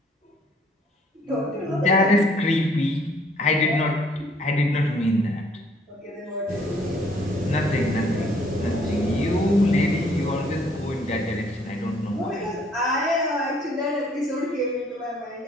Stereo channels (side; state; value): both; normal; correlation 0.62